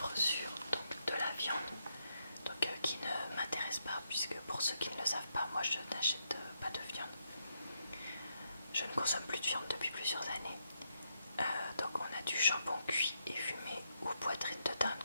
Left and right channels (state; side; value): inverted; both; correlation -0.80